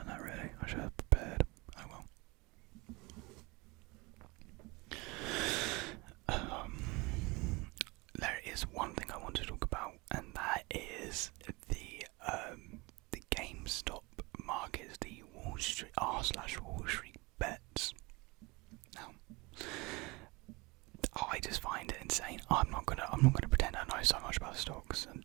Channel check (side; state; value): left; quieter; 25.1 dB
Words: that, really. I should have prepared. Oh well. There is one thing I want to talk about, and that is the GameStop markets, the Wall Street r/Wall Street bets. Now, I just find it insane. I'm not gonna pretend I know so much about stocks and